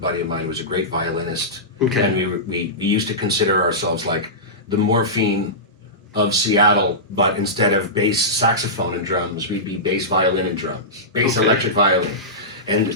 of mine who was a great violinist. Okay. And we used to consider ourselves like the Morphine of Seattle, but instead of bass saxophone and drums, we'd be bass violin and drums, bass electric violin.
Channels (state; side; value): normal; both; correlation -0.16